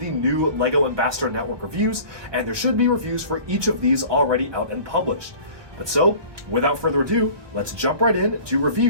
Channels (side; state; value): left; late; 1.3 ms